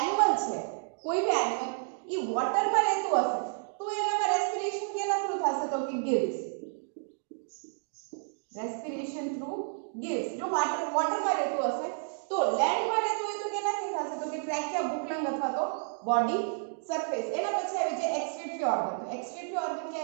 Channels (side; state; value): left; silent; digital silence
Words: છે, કોઈ બી એનિમલ એ વોટરમાં રહેતું હશે તો એનામાં રેસ્પિરેશન કેના થ્રુ થશે તો કે ગિલ્સ. Respiration through ગિલ્સ. જો વોટરમાં રહેતું હશે તો લેન્ડમાં રહેતું હોય તો કેનાથી થશે તો કે ટ્રેકિયા, બુકલંગ અથવા તો બોડી સરફેસ. એના પછી આવી જાય એક્સક્રીટરી ઓર્ગન. તો એક્સક્રીટરી ઓર્ગન કે